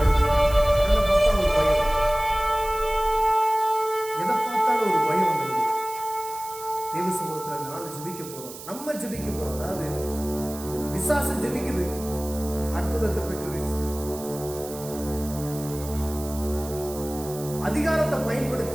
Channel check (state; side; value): noise; right; hiss, 14 dB below the sound